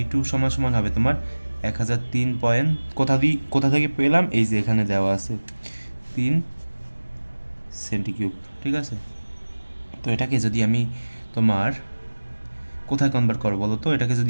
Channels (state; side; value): inverted; both; correlation -1.00